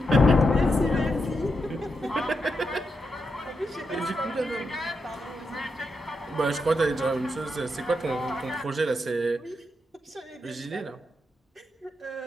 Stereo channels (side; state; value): both; normal; correlation 0.84